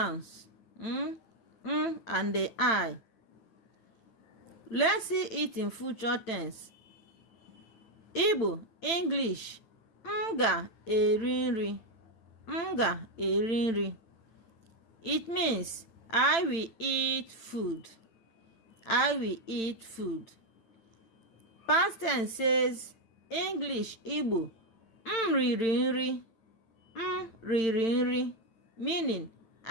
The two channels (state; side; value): late; right; 8.9 ms